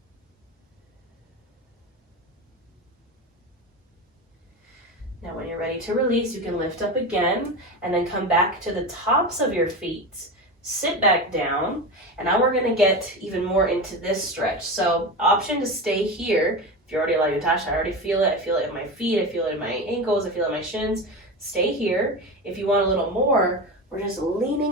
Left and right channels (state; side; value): normal; both; correlation 0.23